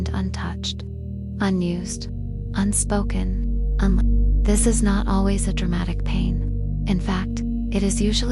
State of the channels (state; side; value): identical; both; correlation 1.00